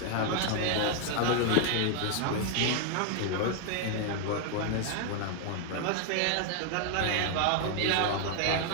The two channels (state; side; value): different; both; correlation 0.00